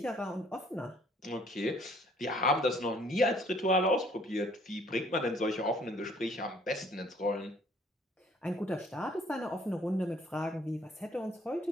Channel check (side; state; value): both; normal; correlation 0.59